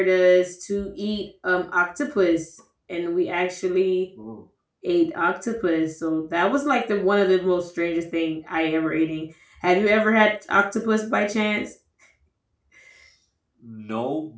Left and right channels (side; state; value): both; identical; correlation 1.00